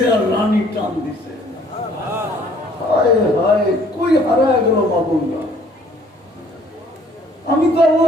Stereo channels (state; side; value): normal; both; correlation 0.59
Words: আর রানী টান দিছে। হায় হায়, কই হারায় গেল মা বোনরা? আমি তো